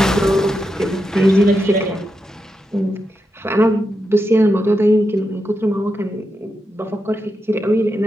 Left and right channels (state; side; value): normal; both; correlation 0.86